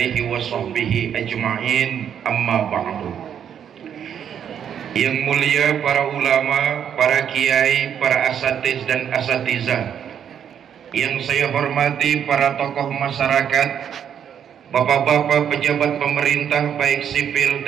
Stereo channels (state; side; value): quieter; left; 8.7 dB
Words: wa sahbihi ajma'in, amma ba'du. Yang mulia para ulama, para kiai, para asatiz dan asatizah, yang saya hormati para tokoh masyarakat, bapak-bapak pejabat pemerintah baik sipil,